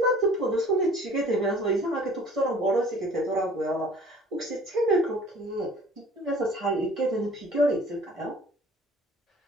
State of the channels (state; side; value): normal; both; correlation 0.50